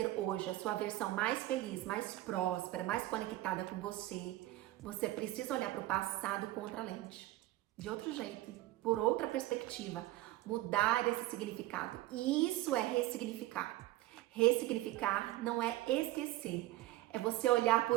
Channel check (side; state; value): left; quieter; 16.5 dB